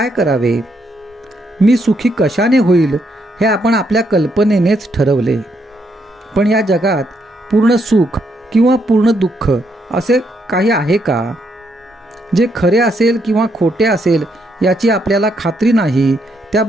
करावे? मी सुखी कशाने होईल हे आपण आपल्या कल्पनेनेच ठरवले. पण या जगात पूर्ण सुख किंवा पूर्ण दुःख असे काही आहे का? जे खरे असेल किंवा खोटे असेल याची आपल्याला खात्री नाही, त्या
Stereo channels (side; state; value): both; normal; correlation 0.76